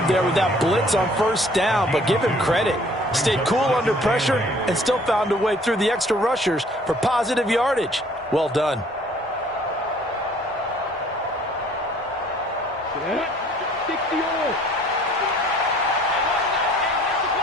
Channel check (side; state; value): both; normal; correlation 0.56